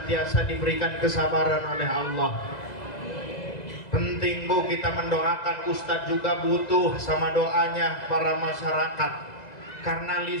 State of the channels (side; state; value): right; late; 2.0 ms